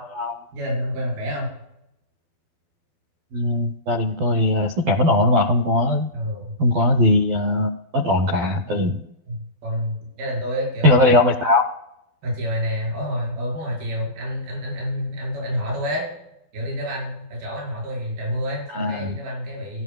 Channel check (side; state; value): left; late; 12 ms